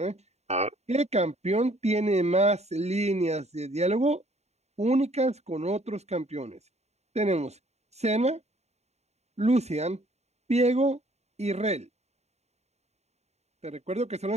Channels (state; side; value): late; left; 0.32 ms